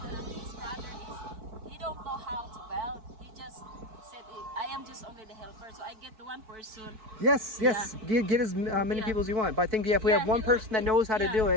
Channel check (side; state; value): left; late; 4.6 ms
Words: brother he don't know how to build. He just said I am just only the helper, so I get the one person. Yes. Get as many people as you want. But I think if we have one person that knows how to do